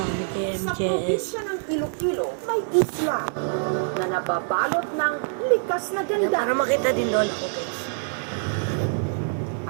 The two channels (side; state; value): left; silent; digital silence